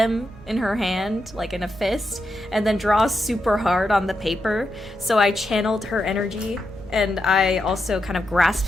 in her hand, like in a fist, and then draw super hard on the paper. So I channeled her energy, and I also kind of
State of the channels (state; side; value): normal; both; correlation 0.86